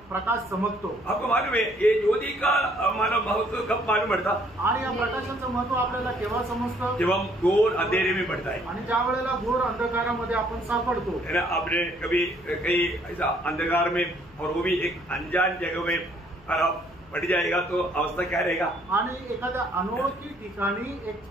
प्रकाश चमकतो. आपको मालूम है ये ज्योति का मानव महत्व कब मालूम पड़ता. आणि या प्रकाशाचं महत्व आपल्याला केव्हा समजतं. जब हम घोर अंधेरे में पड़ता है. आणि ज्या वेळेला घोर अंधकारामध्ये आपण सापडतो. है ना. आपने कभी कहीं ऐसा अंधकार में और वो भी एक अनजान जगह में पड़ जाएगा तो अवस्था क्या रहेगा. आणि एखाद्या अनोळखी ठिकाणी एक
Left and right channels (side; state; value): left; noise; hum, 25 dB below the sound